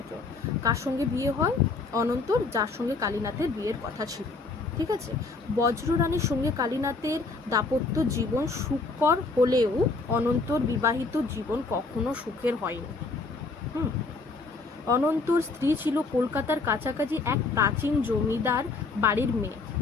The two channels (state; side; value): quieter; right; 3.9 dB